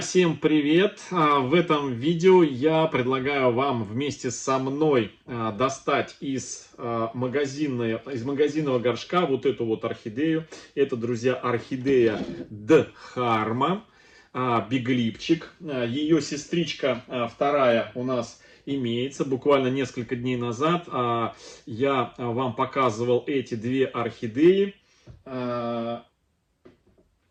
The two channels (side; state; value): both; identical; correlation 1.00